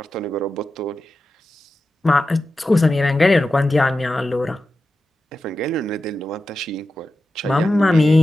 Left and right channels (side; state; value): both; normal; correlation 0.92